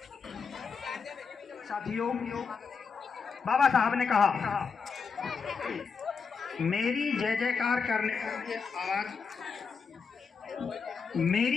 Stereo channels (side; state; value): right; quieter; 5.6 dB